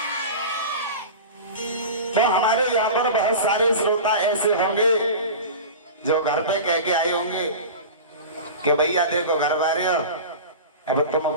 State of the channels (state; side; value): inverted; both; correlation -0.31